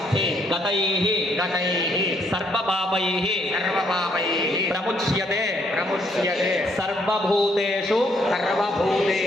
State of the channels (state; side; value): normal; both; correlation 0.70